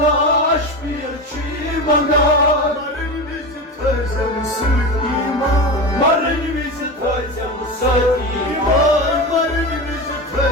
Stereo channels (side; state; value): both; normal; correlation 0.23